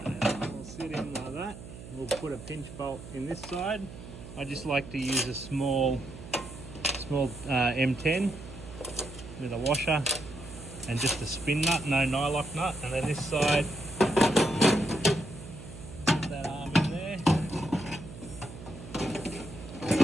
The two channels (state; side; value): noise; right; hum, 14 dB below the sound